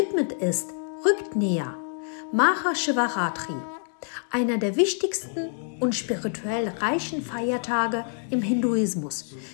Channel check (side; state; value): right; silent; 61 dB below the other